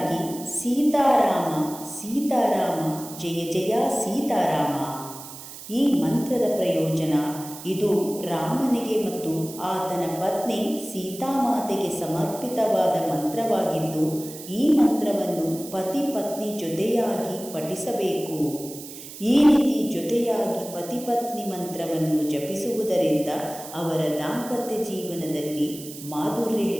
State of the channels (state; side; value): noise; right; hiss, 14 dB below the sound